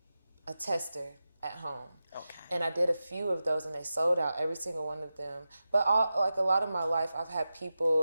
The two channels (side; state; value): both; inverted; correlation -0.92